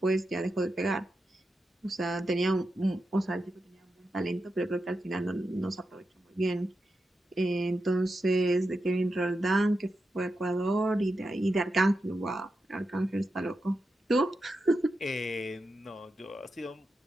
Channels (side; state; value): both; normal; correlation 0.88